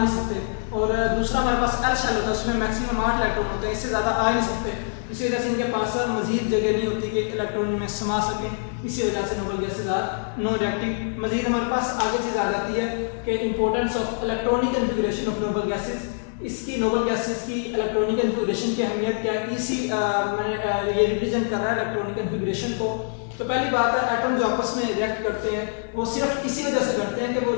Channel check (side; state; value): right; silent; digital silence